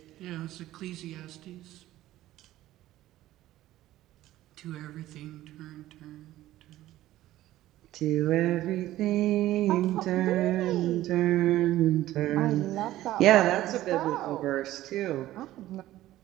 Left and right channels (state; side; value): quieter; left; 14.9 dB